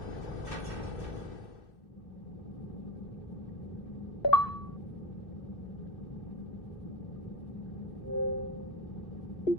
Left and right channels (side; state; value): right; late; 2.7 ms